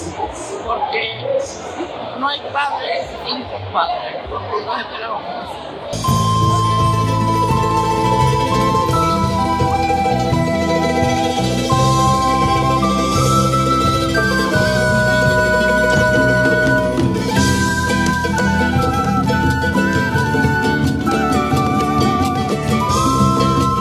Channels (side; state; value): both; identical; correlation 1.00